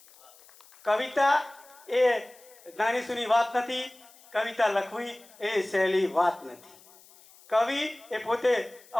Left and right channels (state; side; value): noise; left; hiss, 25 dB below the sound